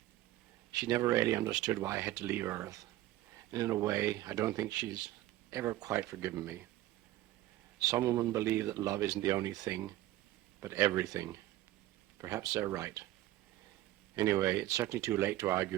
She never really understood why I had to leave Earth. And in a way, I don't think she's ever quite forgiven me. Some women believe that love isn't the only thing, but everything. Perhaps they're right. Anyway, it's certainly too late to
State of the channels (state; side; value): quieter; left; 15.5 dB